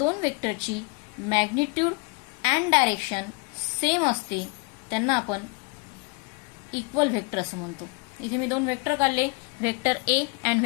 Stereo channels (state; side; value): quieter; right; 31.7 dB